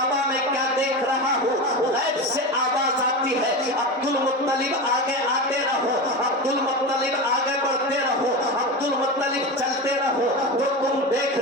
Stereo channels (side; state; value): both; normal; correlation 0.23